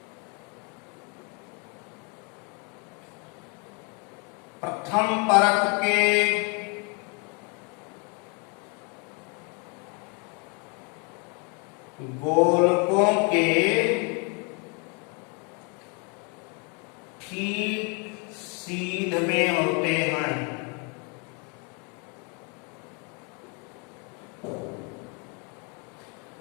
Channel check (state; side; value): quieter; right; 34.4 dB